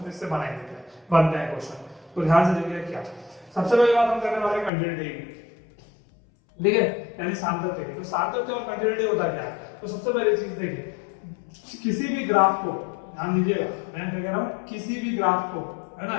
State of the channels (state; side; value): drops out; right; at 4.7 s